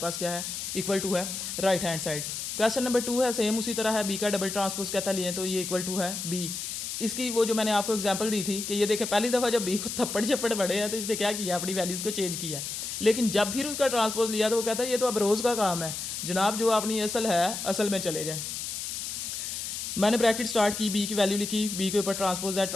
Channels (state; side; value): noise; left; hiss, 5 dB below the sound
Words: क्या है, इक्वल टू है right hand side. Question number 2 है सेम उसी तरह है, बी का डबल ट्रांसपोज कहता लिए तो ये इक्वल टू है बी। इसकी वो जो मैंने आपको एग्जांपल दी थी कि ये देखें पहली दफ़ा जब बी को थप्पड़ झप्पड़ पड़े हैं तो इसने क्या किया, अपनी वैल्यूज़ को चेंज किया है। लेकिन जब फिर उसका ट्रांसपोज लिया तो वो कहता है ये तो अब रोज़ का काम है जनाब, जो अपनी असल है असल में चले जाए। मैंने ब्रैकेट स्टार्ट की, बी की वैल्यू लिखी, बी के ऊपर ट्रांसपोज है,